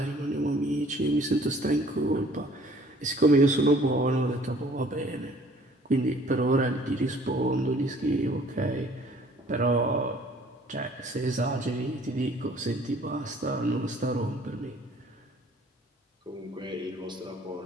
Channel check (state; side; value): normal; both; correlation 0.55